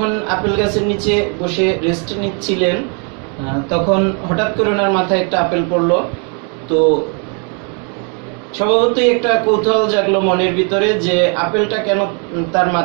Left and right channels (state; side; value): quieter; left; 37.9 dB